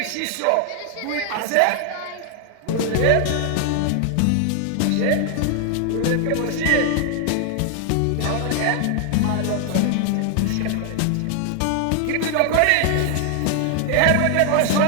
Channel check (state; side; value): different; both; correlation 0.00